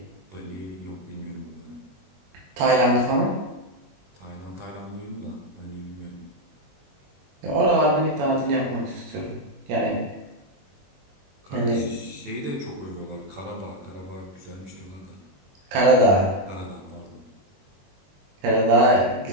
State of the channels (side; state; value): left; late; 21 ms